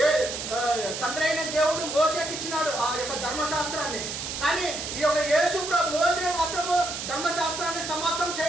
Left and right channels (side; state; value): right; noise; hiss, 6 dB below the sound